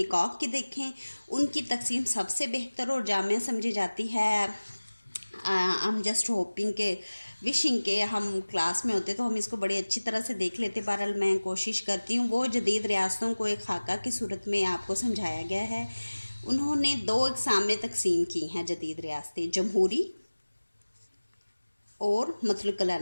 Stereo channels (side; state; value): both; inverted; correlation -1.00